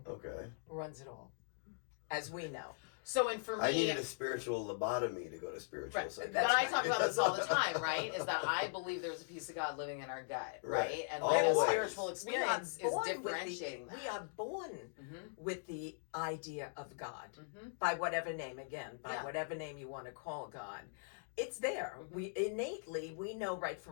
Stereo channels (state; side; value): silent; right; digital silence